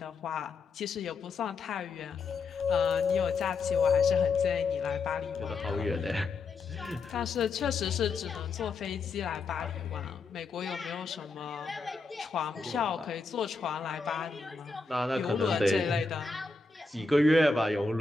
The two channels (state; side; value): quieter; right; 4.1 dB